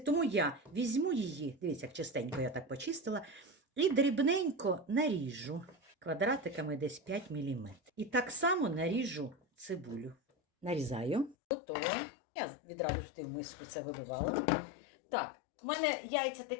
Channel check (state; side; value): drops out; right; at 11.4 s